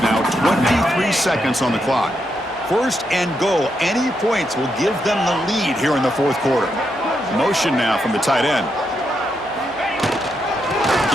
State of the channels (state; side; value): normal; both; correlation 0.82